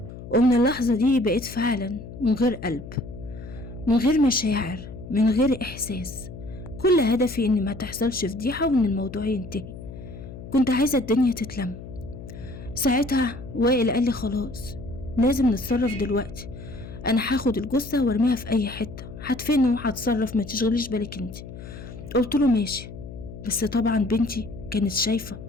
ومن اللحظة دي بقيت فعلا من غير قلب، من غير مشاعر، من غير احساس. كل هدفي ان ما تحصلش فضيحة وان الموضوع ينتهي. كنت عايزة الدنيا تتلم. ساعتها وائل قال لي خلاص لازم نتصرف دلوقتي، انا هاخد الجثة وارميها في اي حتة، هدفنه وهتصرف ما تشغليش بالك انت. قلت له ماشي، بس طبعا بنتي كانت شايفة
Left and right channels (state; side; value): noise; left; hum, 13 dB below the sound